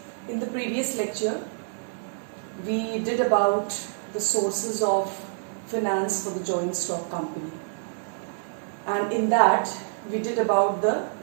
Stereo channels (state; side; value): silent; left; digital silence